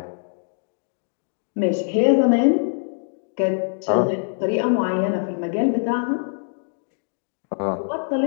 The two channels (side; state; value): right; silent; digital silence